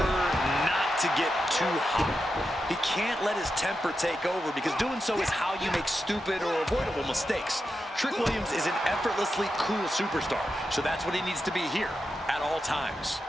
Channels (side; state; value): both; normal; correlation 0.88